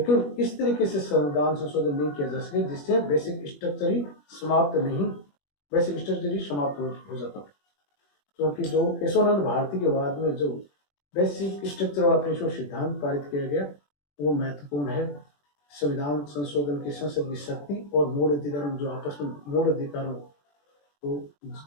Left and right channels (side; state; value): right; late; 21 ms